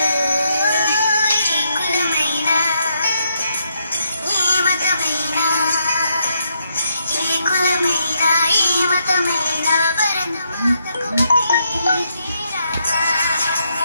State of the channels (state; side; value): inverted; both; correlation -0.77